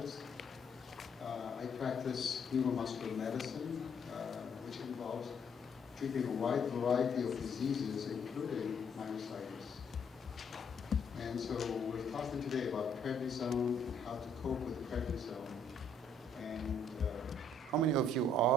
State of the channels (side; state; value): both; normal; correlation 0.67